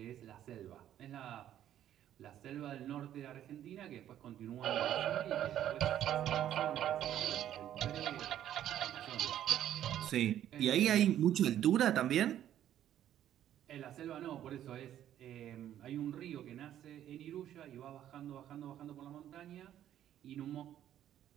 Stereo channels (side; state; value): left; quieter; 11.3 dB